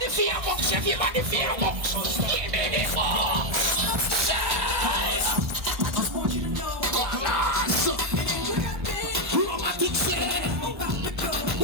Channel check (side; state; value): left; late; 1.4 ms